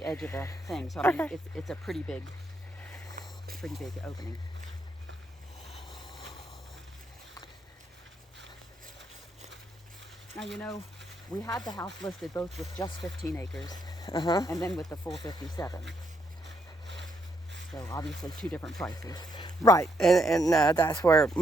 edge of the thing. So I mean, Okay. it's a pretty big opening. Now We had the house listed both with just 15 acres and then with the full 57. So obviously 2 different prices. Right, and that's where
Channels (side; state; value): both; normal; correlation 0.76